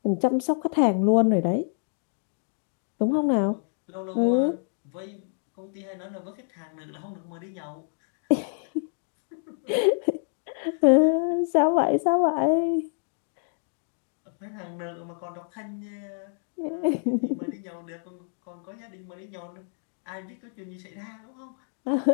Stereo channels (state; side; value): silent; right; digital silence